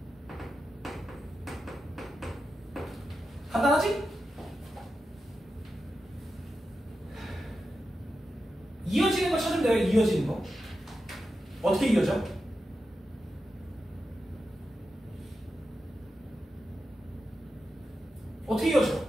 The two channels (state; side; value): normal; both; correlation 0.90